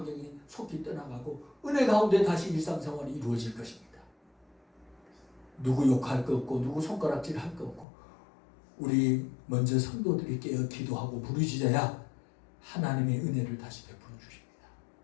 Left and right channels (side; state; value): right; drops out; at 7.9 s